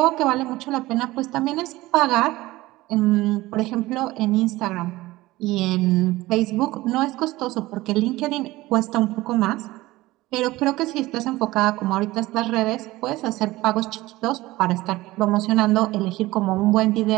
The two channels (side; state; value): left; quieter; 18.6 dB